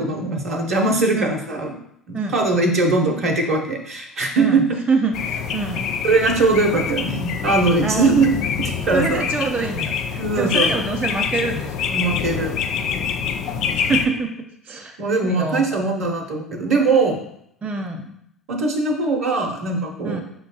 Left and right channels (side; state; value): both; normal; correlation 0.36